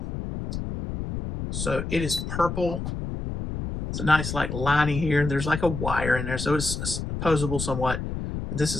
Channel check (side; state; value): left; noise; rumble, 5 dB below the sound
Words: So it is purple. It's a nice like lining here. There's like a wire in there, so it's posable somewhat. This